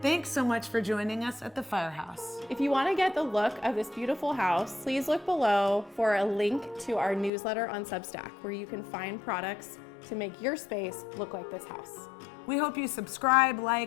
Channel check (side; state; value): right; drops out; at 7.3 s